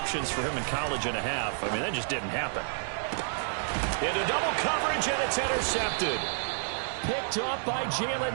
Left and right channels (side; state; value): left; silent; digital silence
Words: for him in college and a half. I mean, that just didn't happen. Into double coverage, and it's intercepted. Picked off by Jalen